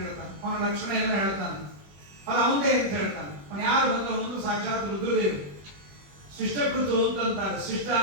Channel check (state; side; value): late; left; 21 ms